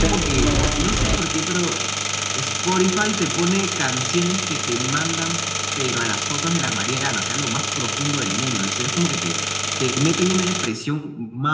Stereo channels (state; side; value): identical; both; correlation 1.00